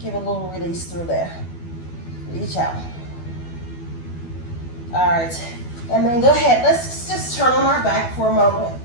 Give it a little release through there. Reach out. All right, and then go ahead. Let's just turn on our back for a moment.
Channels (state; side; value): late; right; 12 ms